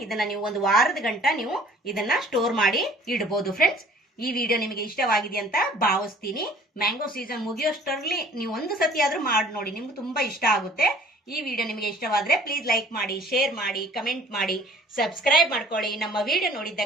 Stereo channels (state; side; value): normal; both; correlation 0.53